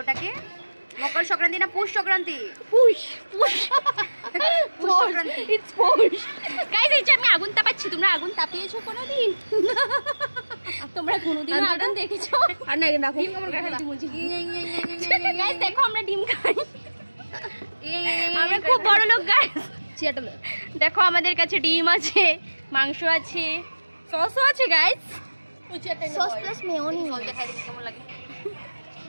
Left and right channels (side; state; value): both; inverted; correlation -1.00